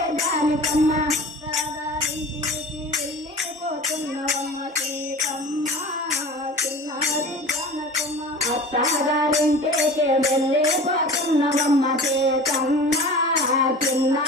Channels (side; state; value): both; normal; correlation 0.39